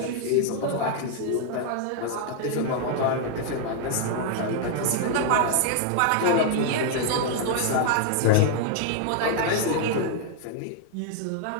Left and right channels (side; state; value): both; different; correlation 0.00